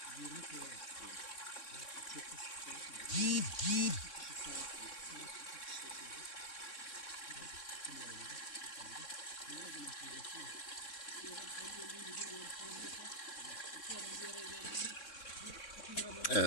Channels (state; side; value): late; right; 3.6 ms